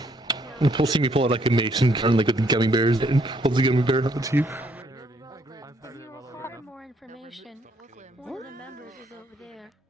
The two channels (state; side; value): normal; both; correlation 0.69